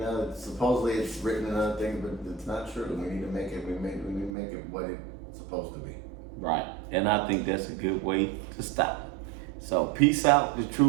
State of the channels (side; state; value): left; drops out; at 4.3 s